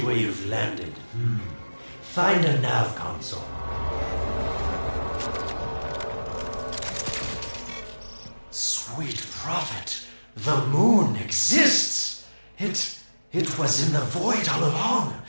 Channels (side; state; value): both; inverted; correlation -1.00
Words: you've landed. Find a nav console. Sweet prophet, the moon exists! It was in the void all along.